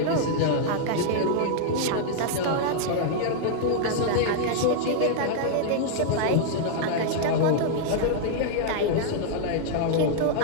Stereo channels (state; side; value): different; both; correlation -0.01